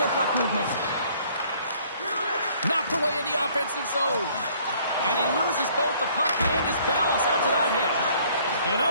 puck movement. Knocked away in the offensive zone. And he loses both the puck and his balance after that hit. And that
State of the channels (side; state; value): both; inverted; correlation -0.59